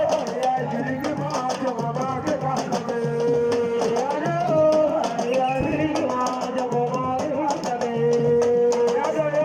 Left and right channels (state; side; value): identical; both; correlation 1.00